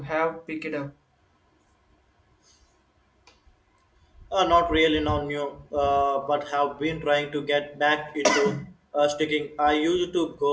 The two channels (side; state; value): both; identical; correlation 1.00